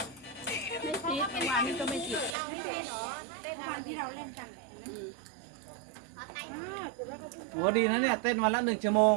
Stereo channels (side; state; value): left; drops out; at 2.4 s